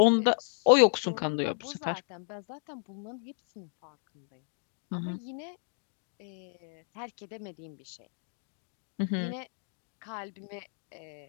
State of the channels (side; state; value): right; silent; 56 dB below the other